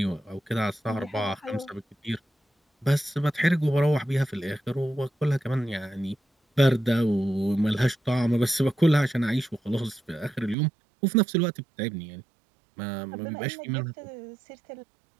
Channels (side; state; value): left; drops out; at 10.6 s